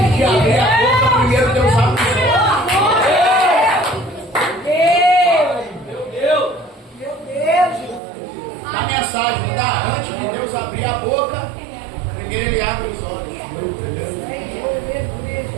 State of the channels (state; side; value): drops out; left; at 8.0 s